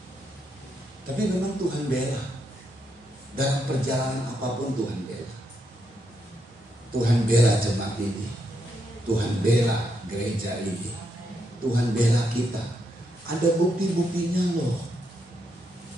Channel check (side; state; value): both; normal; correlation 0.80